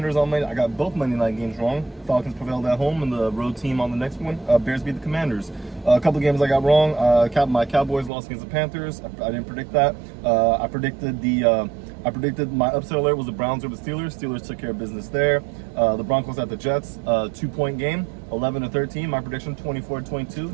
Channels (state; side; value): drops out; left; at 8.1 s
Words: on Monday. I got both Monday night games wrong. Falcons prevailed at home, and the road team on the next one. Bears beat the Commanders. A couple of games I got wrong. My Cowboys lost against the Panthers. I didn't predict that. I predicted my upset alert was the Browns over the Steelers. Steelers took care of business there. The Broncos at the Jets, 2-point game, 11-13. My prediction,